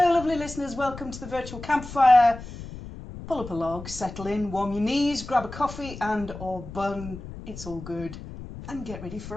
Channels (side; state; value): left; noise; rumble, 12 dB below the sound